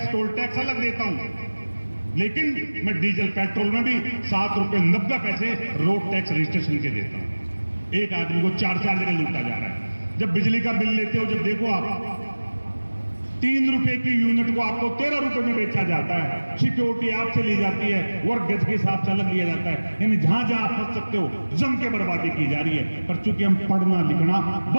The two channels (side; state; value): both; inverted; correlation -1.00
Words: टोल टैक्स अलग देता हूं। लेकिन मैं डीजल पेट्रोल में भी 7 रुपए 90 पैसे रोड टैक्स रजिस्ट्रेशन के देता हूं। एक आदमी को 4 जगह लूटा जा रहा है। जब बिजली का बिल लेते हो, जब देखो आप ₹3 की यूनिट को आपको 13 रुपए में बेचा जाता है। सिक्योरिटी आपसे ली जाती है, वर्ग गज के हिसाब से अलग लिया जाता है। यानी जहां जहां आप फंस सकते हो जम के बर्बादी की जा रही है। पर चूंकि हम पढ़ना लिखना